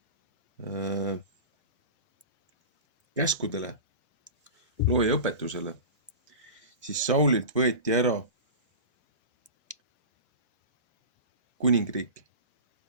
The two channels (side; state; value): both; inverted; correlation -0.31